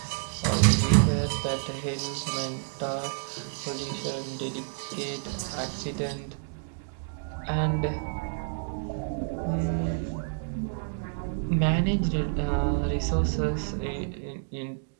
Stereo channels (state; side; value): silent; left; digital silence